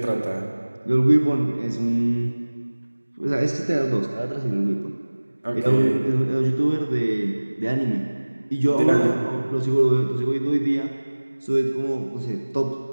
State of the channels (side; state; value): both; inverted; correlation -1.00